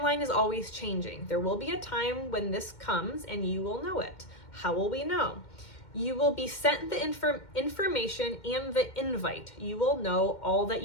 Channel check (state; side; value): late; right; 2.1 ms